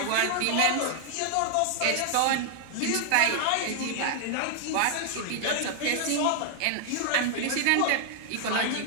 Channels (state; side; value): different; both; correlation 0.00